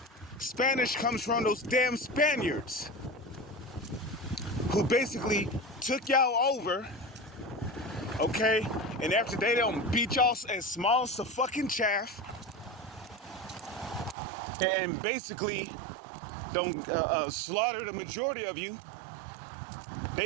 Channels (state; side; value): drops out; left; at 14.2 s